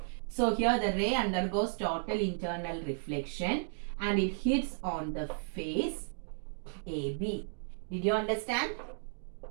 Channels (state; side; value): silent; left; digital silence